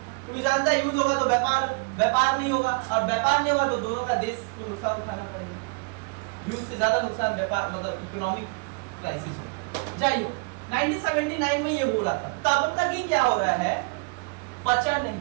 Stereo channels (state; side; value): quieter; left; 32.7 dB